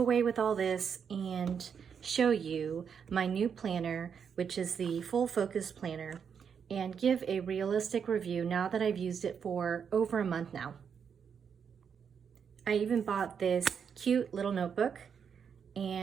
with all this and show you my new planner, which is the Full Focus Planner, and give a realistic review now that I've used it for over a month now. I even bought this cute little notebook,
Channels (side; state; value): left; quieter; 7.1 dB